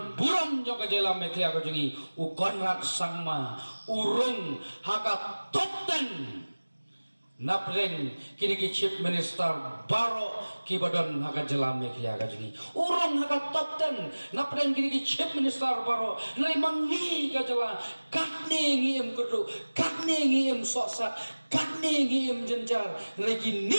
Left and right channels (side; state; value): both; inverted; correlation -1.00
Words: buram jong ka jela Meklia ka jungi u Konrad Sangma urung haka top 10 napreng kini ki chief minister baro ki badon haka jela Meklia ka jungi urung haka top 10 napreng kini ki chief minister baro nai mangi ka jela katne ngiem kudu katne ngiem soksa katne ngiem jenjar nai ki